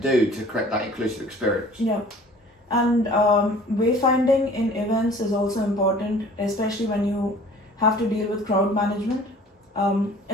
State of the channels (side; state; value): both; normal; correlation 0.49